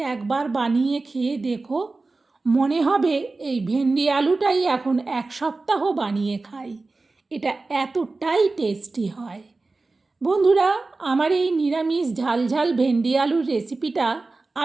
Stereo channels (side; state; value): left; quieter; 3.5 dB